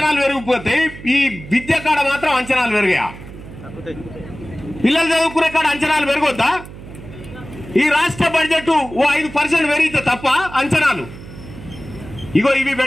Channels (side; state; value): right; noise; hum, 15 dB below the sound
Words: పెరిగిపోతాయి, ఈ విద్య కాడ మాత్రం అంచనాలు పెరిగాయా? పిల్లలు చదువుకునే కాడ అంచనాలు పెరగొద్దా? ఈ రాష్ట్ర బడ్జెట్ ఓ 5% పెరిగితే తప్ప అంచనాలు ఇగో ఇవి